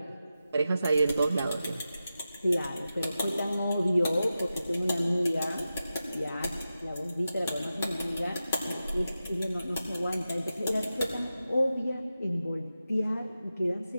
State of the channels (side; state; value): both; inverted; correlation -0.92